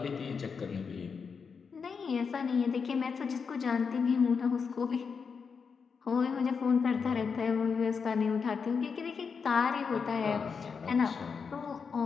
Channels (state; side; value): quieter; right; 5.7 dB